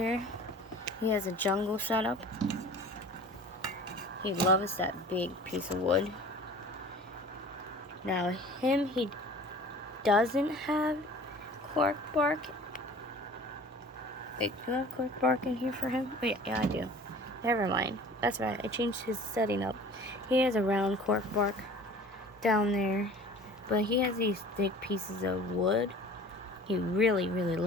he has a jungle setup. He loves that big piece of wood. Now, he doesn't have cork bark. Wait, do I have cork bark in here for him? Oh, yeah, I do. Never mind. That's right, I changed his setting up. He has a round cork bark down there, but he has these thick pieces of wood. He really, really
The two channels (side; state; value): both; normal; correlation 0.44